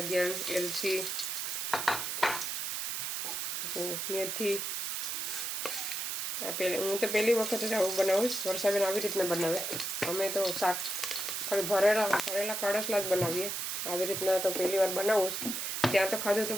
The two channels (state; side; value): noise; right; hiss, 2 dB below the sound